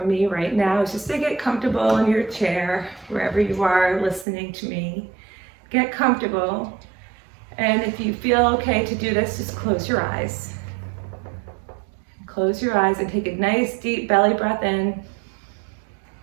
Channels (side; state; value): left; drops out; at 4.2 s